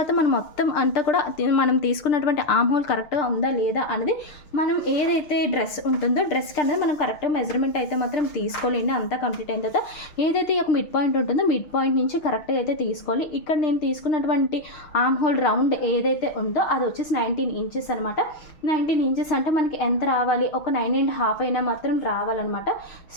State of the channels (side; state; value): right; late; 6.7 ms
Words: మనం మొత్తం అంతా కూడా మనం తీసుకున్నటువంటి ఆర్మ్ హోల్ కరెక్ట్గా ఉందా లేదా అనేది మనం ఏదైతే డ్రెస్ ఉంటుందో డ్రెస్కి అనేది మనం కరెక్ట్గా మెజర్మెంట్ అయితే మాత్రం తీసుకోలేండి. అంతా కంప్లీట్ అయిన తర్వాత ఏదైతే ఒక మిడ్ పాయింట్ ఉంటుందో మిడ్ పాయింట్ నుంచి కరెక్ట్గా అయితే తీసుకోవాలి. ఇక్కడ నేను తీసుకున్నటువంటి ఆర్మ్ హోల్ రౌండ్ ఏదైతే ఉందో అది వచ్చేసి 19 ఇంచెస్ అనమాట. 19 ఇంచెస్ అంటే మనకి ఎంత రావాలి, ఒక 9.5 అయినా మాత్రం రావాలన్నమాట.